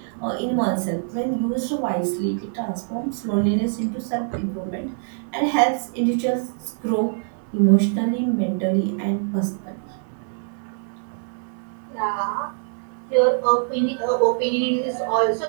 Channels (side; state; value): left; silent; 63 dB below the other